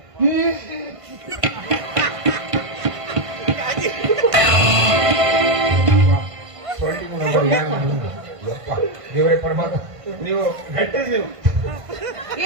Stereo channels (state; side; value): late; left; 1.5 ms